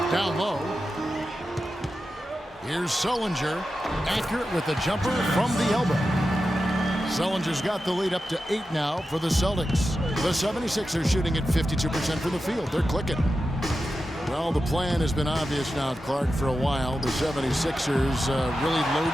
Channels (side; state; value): both; normal; correlation 0.91